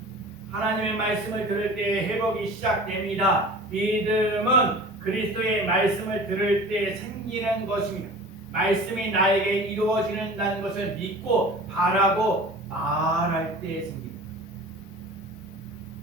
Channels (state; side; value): normal; both; correlation 0.40